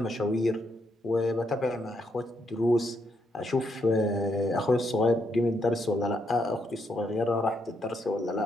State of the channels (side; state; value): both; normal; correlation 0.77